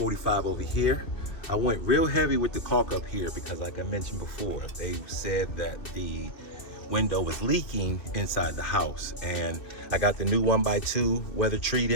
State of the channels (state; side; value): late; right; 2.6 ms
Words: over here. I went real heavy with the caulk up here because, like I mentioned before, they said that the window was leaking inside the house. And I got the new 1x2 weather